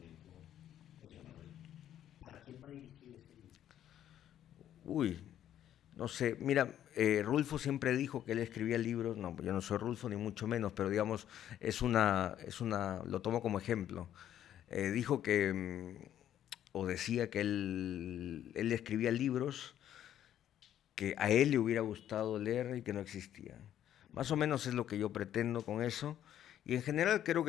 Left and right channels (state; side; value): quieter; right; 11.1 dB